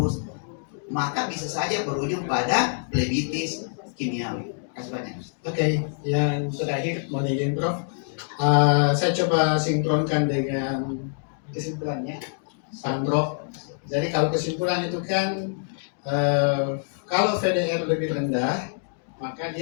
maka bisa saja berujung pada plebitis kimiawi. Terima kasih banyak. Oke, yang terakhir mau izin Prof. Saya coba sinkronkan dengan kesimpulannya, Sandro. Jadi kalau kesimpulan itu kan kalau VDR lebih rendah, maka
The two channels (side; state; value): right; silent; digital silence